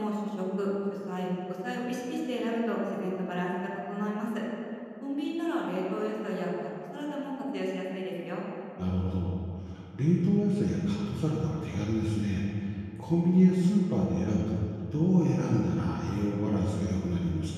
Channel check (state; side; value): identical; both; correlation 1.00